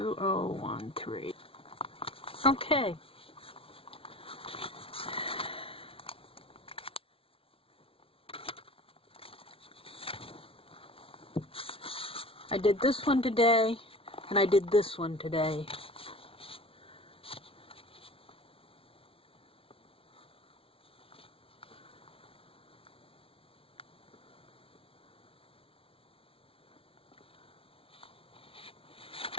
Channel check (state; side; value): late; right; 0.26 ms